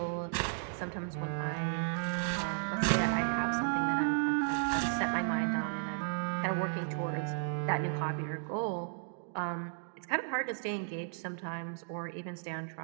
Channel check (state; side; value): silent; left; digital silence